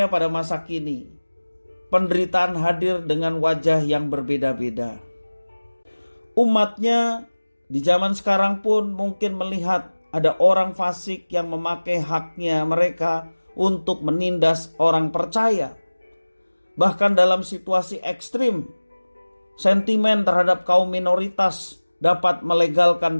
pada masa kini, penderitaan hadir dengan wajah yang berbeda-beda. Umatnya di zaman sekarang pun mungkin melihat ada orang fasik yang memakai haknya mereka untuk menindas orang percaya. Bahkan dalam situasi ekstrim, sentimen terhadap kaum minoritas dapat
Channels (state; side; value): inverted; both; correlation -1.00